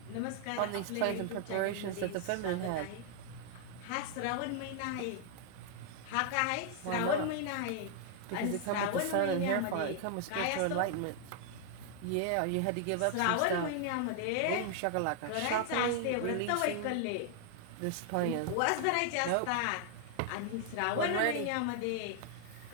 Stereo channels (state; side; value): different; both; correlation 0.00